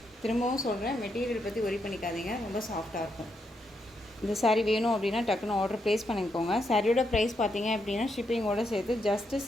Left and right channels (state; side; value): normal; both; correlation 0.81